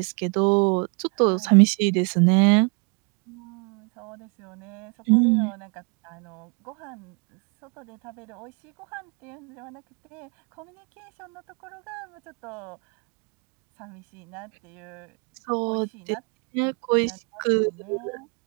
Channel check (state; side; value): quieter; left; 34.7 dB